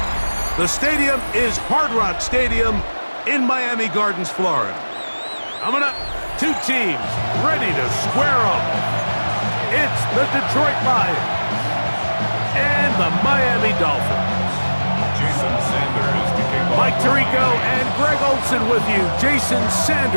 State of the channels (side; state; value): both; inverted; correlation -1.00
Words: The stadium is Hard Rock Stadium in Miami Gardens, Florida. Coming up, two teams ready to square off. It's the Detroit Lions and the Miami Dolphins. Jason Sanders to kick off. Mike Tirico and Greg Olsen with you. Jason